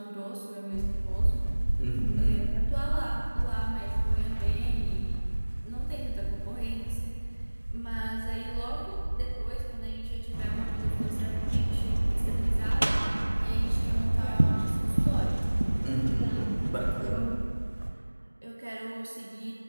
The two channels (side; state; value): both; inverted; correlation -1.00